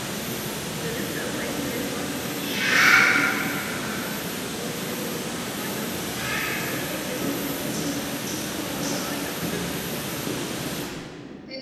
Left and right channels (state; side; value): identical; both; correlation 1.00